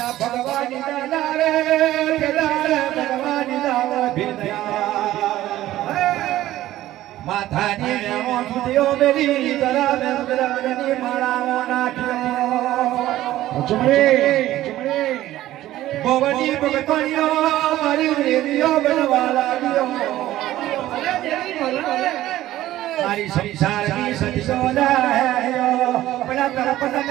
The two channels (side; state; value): left; quieter; 14.6 dB